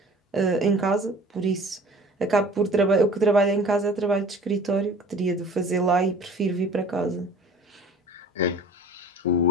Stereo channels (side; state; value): both; normal; correlation 0.47